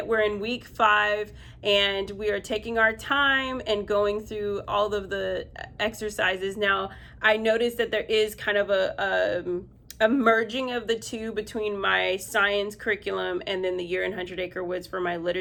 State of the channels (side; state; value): both; identical; correlation 1.00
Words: We're in week 5, and we are taking our time and going through all of the exercises. Now, I noticed that there is kind of a merging of the two between my science curriculum and then the Year in 100 Acre Woods for my